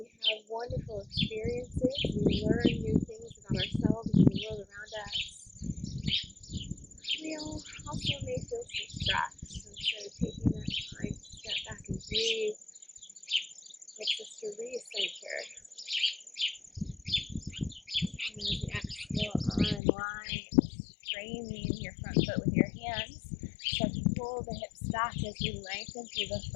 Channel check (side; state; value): right; drops out; at 19.8 s